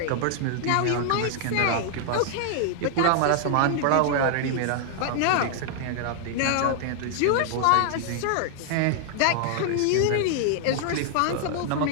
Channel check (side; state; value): both; different; correlation -0.01